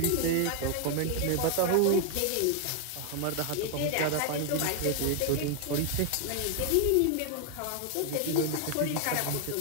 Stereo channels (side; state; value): both; different; correlation 0.00